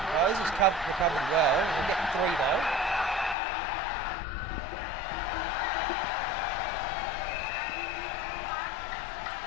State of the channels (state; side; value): drops out; right; at 3.4 s